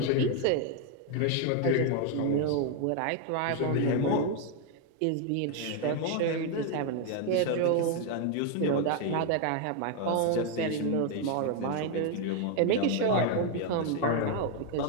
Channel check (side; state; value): both; different; correlation 0.01